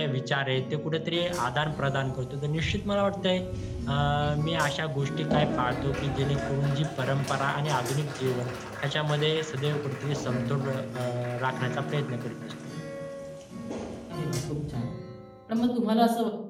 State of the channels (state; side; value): identical; both; correlation 1.00